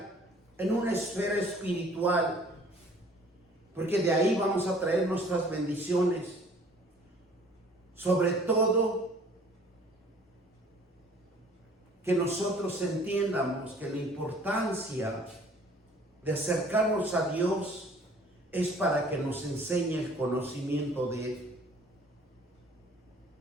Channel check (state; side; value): normal; both; correlation 0.53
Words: en una esfera espiritual, porque de ahí vamos a traer nuestras bendiciones. Sobre todo, que nosotros entiendamos que la importancia de acercarnos a Dios es para que nos enseñe el conocimiento de Él.